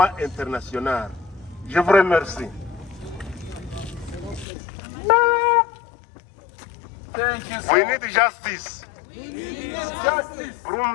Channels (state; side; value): drops out; right; at 4.5 s